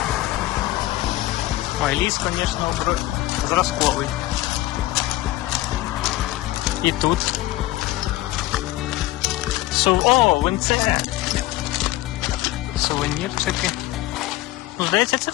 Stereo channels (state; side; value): quieter; right; 17.0 dB